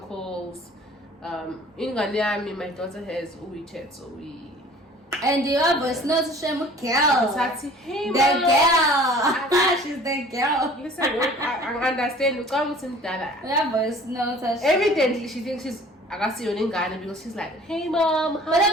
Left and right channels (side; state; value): both; normal; correlation 0.49